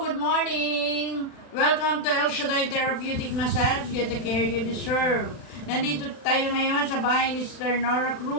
morning! Welcome to El Shaddai Therapeutic Massage. Get the care you deserve. Nandito tayo ngayon sa bahay ni Sister Nora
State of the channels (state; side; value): late; right; 40 ms